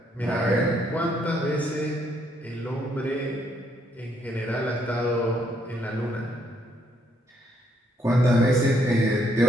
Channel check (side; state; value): both; normal; correlation 0.73